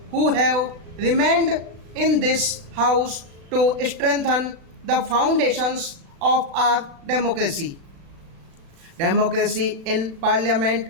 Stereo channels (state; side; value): late; left; 36 ms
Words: who have remained in this House to strengthen the foundations of our democracy. Democracy in